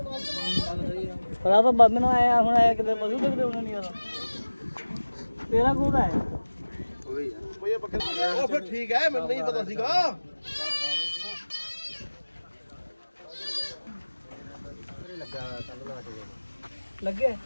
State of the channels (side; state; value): both; inverted; correlation -1.00